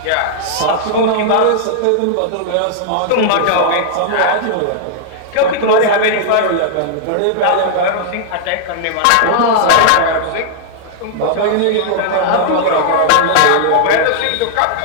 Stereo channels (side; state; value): both; different; correlation -0.01